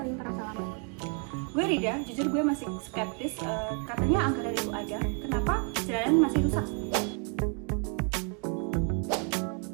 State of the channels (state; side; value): quieter; left; 39.6 dB